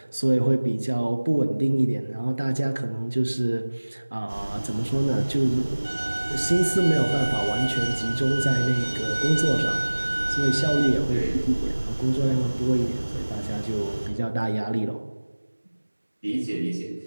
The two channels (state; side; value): inverted; both; correlation -1.00